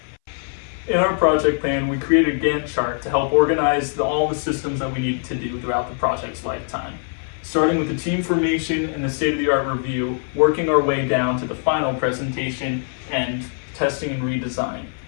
In our project plan, we created a Gantt chart to help organize all the systems that we needed to do throughout the project's lifetime. Starting with the team formation and the state-of-the-art review, working our way down to the final presentation and testing and redesign.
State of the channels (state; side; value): silent; right; 60 dB below the other